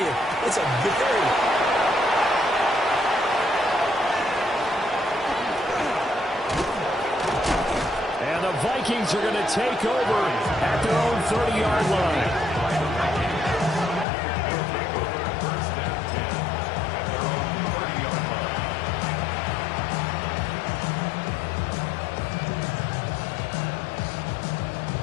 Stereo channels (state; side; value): drops out; right; at 14.1 s